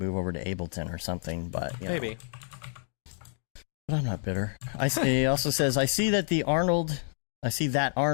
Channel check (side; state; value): right; silent; digital silence